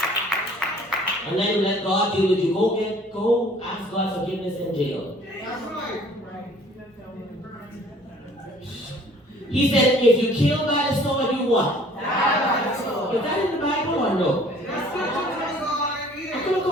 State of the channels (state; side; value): normal; both; correlation 0.54